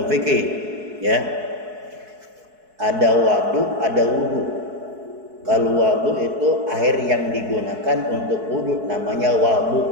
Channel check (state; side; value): late; left; 4.6 ms